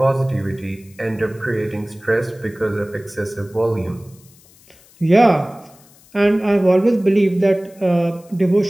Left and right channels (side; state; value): left; noise; hiss, 27 dB below the sound